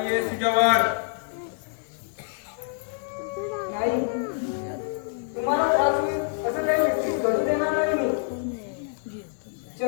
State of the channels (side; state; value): right; silent; 60 dB below the other